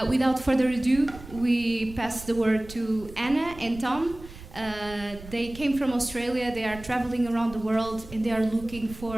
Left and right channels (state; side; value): noise; right; rumble, 16 dB below the sound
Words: Without further ado, we pass the word to Anna and Tom. They came from Australia, they are traveling around the world, and they are looking